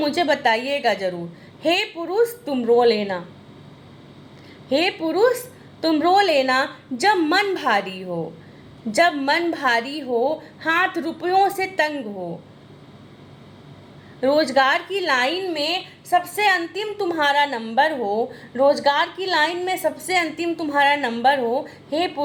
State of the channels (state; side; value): identical; both; correlation 1.00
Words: बताइएगा ज़रूर। हे पुरुष तुम रो लेना, हे पुरुष तुम रो लेना, जब मन भारी हो, जब मन भारी हो, हाथ रुपयों से तंग हो, रोजगार की लाइन में सबसे अंतिम तुम्हारा नंबर हो, रोजगार की लाइन में सबसे अंतिम तुम्हारा नंबर हो। हे